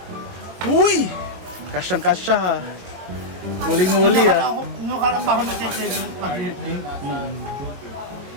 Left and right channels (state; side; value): late; left; 22 ms